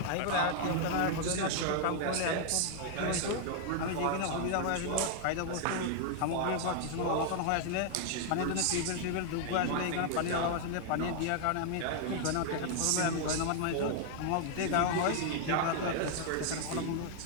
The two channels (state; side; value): different; both; correlation 0.00